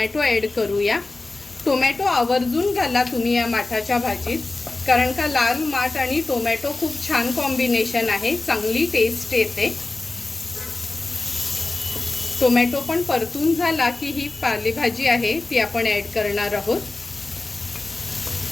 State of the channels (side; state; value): right; quieter; 3.2 dB